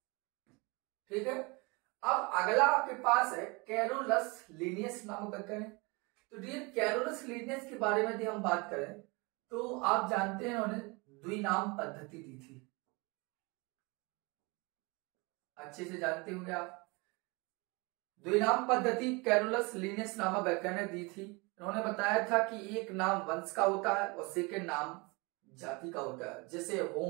ठीक है। अब अगला आपके पास है कैरोलस लिनियस नामक वैज्ञानिक। तो डियर कैरोलस लिनियस के बारे में यदि हम बात करें तो आप जानते हैं उन्होंने द्विनाम पद्धति दी थी, अच्छे से जानते होंगे आप। द्विनाम पद्धति कैरोलस लिनियस नामक वैज्ञानिक दी थी। उन्होंने बताया था कि एक नाम वंश का होता है और सेकंड नाम जाति का होता है। जैसे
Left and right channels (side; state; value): left; quieter; 27.3 dB